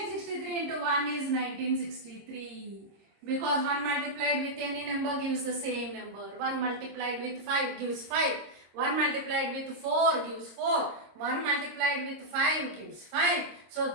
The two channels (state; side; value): late; left; 26 ms